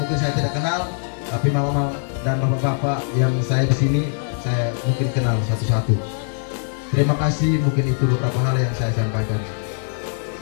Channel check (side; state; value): right; silent; 57 dB below the other